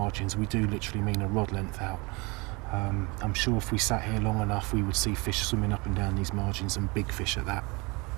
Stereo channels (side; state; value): left; quieter; 26.8 dB